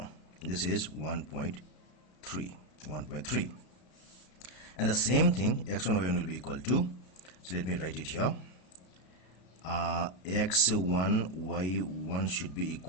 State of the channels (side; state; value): right; late; 33 ms